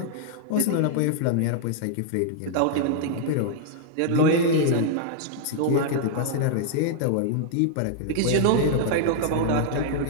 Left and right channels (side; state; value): both; different; correlation -0.01